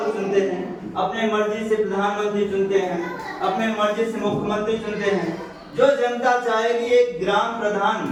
चुनते हैं, अपने मर्जी से प्रधानमंत्री चुनते हैं, अपने मर्जी से मुख्यमंत्री चुनते हैं। जो जनता चाहेगी, एक ग्राम प्रधान,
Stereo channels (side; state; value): both; identical; correlation 1.00